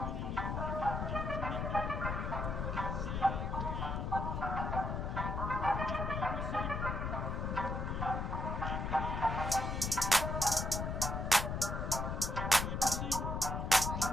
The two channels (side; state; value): left; noise; rumble, 2 dB below the sound